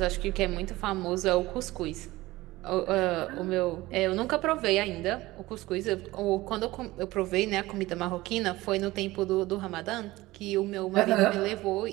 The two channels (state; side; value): quieter; left; 18.8 dB